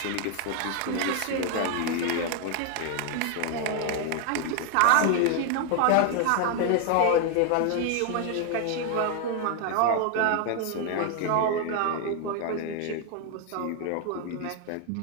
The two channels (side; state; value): both; different; correlation 0.00